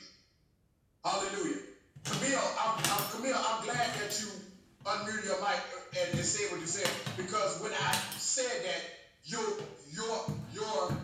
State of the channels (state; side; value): identical; both; correlation 1.00